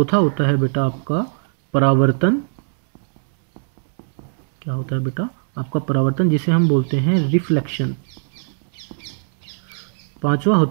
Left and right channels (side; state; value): left; silent; 66 dB below the other